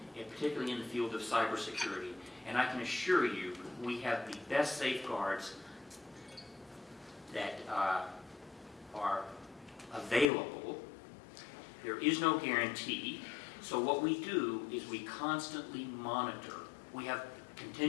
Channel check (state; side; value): drops out; right; at 10.2 s